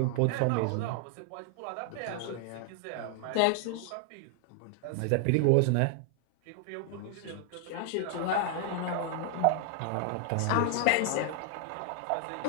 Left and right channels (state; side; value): different; both; correlation 0.00